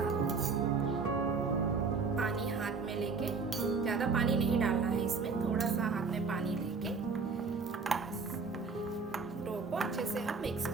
लेके ज़्यादा पानी नहीं डालना है इसमें, थोड़ा सा हाथ में पानी लेके डो को अच्छे से हम मिक्स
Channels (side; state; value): left; quieter; 4.7 dB